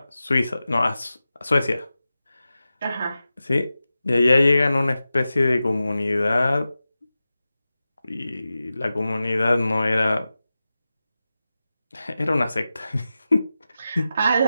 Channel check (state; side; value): inverted; both; correlation -0.94